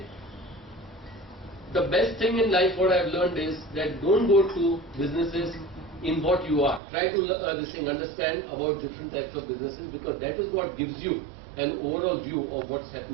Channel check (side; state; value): left; drops out; at 6.8 s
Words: the best thing in life, what I have learned is that don't go to businesses in what you are. Try to understand about different types of businesses, because that is what gives you an overall view of what's